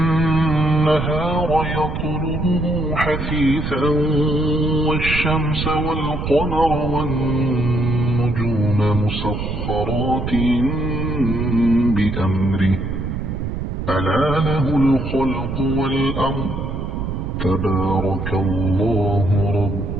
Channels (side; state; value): right; noise; rumble, 4 dB below the sound